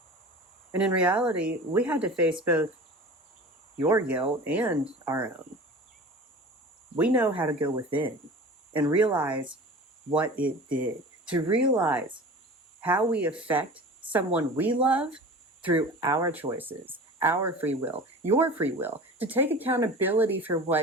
And in reality, we had to face both your guilt and our own. We know how to go within and realize what it did, to realize how we affect someone we love through our choices, our free will, your free will, to take accountability for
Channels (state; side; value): normal; both; correlation 0.38